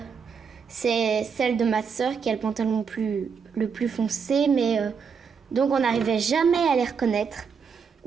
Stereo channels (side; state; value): left; quieter; 6.1 dB